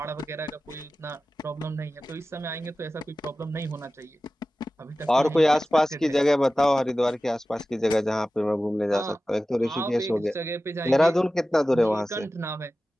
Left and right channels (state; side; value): normal; both; correlation 0.95